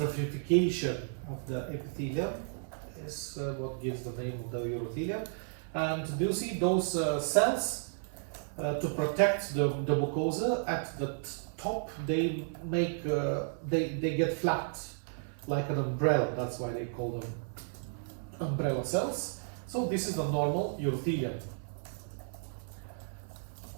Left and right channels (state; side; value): silent; left; 56 dB below the other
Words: of the epithelium is what gives the name of the urothelium. And do you see those cells? To protect the mucosa at the top, they make they get flat like an umbrella. That's why they call them umbrella cells. So this is the normal urothelium.